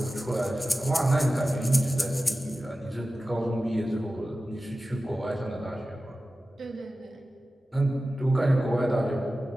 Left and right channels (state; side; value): normal; both; correlation 0.95